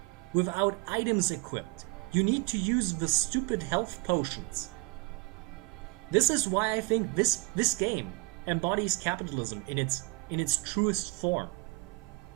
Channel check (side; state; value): left; quieter; 25.7 dB